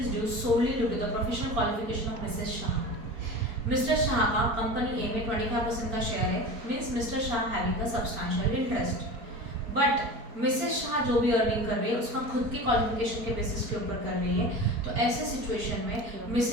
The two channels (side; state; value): left; late; 4.4 ms